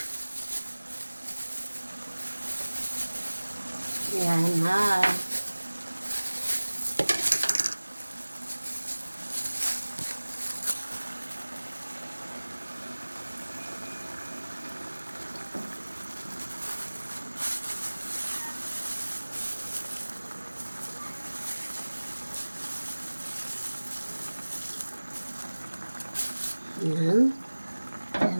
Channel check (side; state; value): both; inverted; correlation -1.00